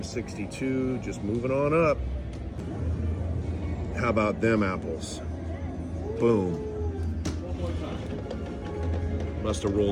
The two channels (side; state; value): both; identical; correlation 1.00